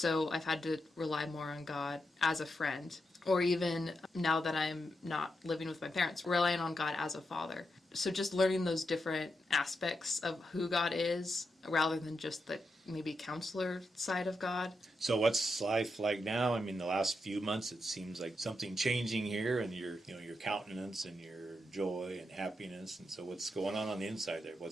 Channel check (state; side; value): normal; both; correlation 0.85